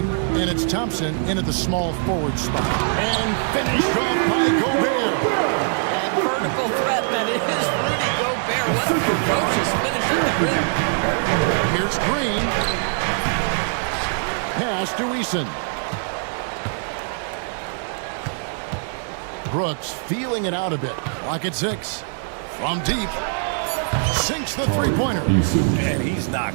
and it's Thompson in at the small forward spot. And finished off by Gobert. And vertical threat that is Rudy Gobert. What a ferocious finish at the rim. Here's Green. Pass to Eason. Brooks feeling it out a bit. Lock at 6. From deep. Sinks the three-pointer. And he's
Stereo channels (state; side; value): silent; left; 59 dB below the other